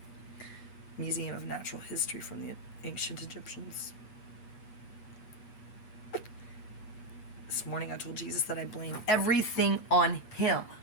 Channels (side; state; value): right; late; 8.3 ms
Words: Museum of Natural History from the ancient Egyptians. This morning I told Jesus that I blame everything on him.